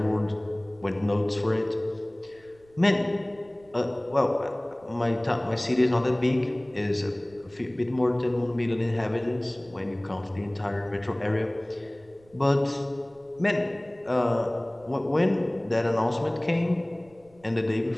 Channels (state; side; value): noise; right; rumble, 29 dB below the sound